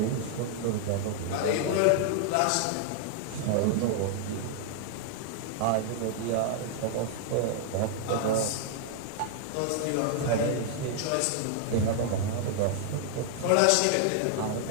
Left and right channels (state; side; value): different; both; correlation 0.00